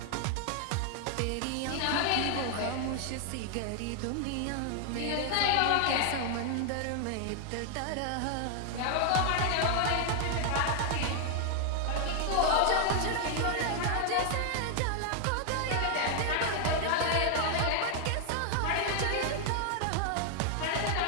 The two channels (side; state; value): both; different; correlation 0.00